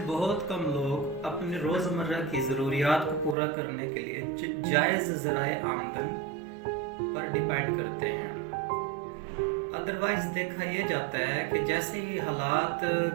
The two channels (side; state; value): left; drops out; at 3.4 s